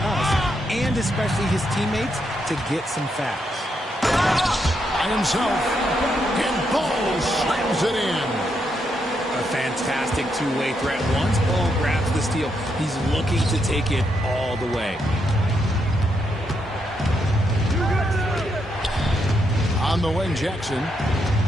and especially his teammates, to get some facts. By himself, and Ball slams it in. A fantastic two-way threat. Once Ball grabs the steal, he's looking to take it all the way. On the wing, Jackson.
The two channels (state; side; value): normal; both; correlation 0.79